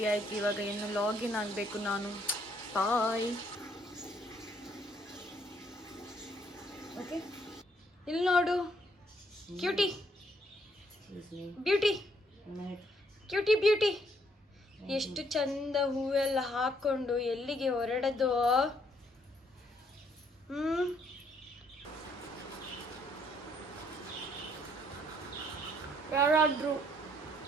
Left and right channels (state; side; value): normal; both; correlation 0.68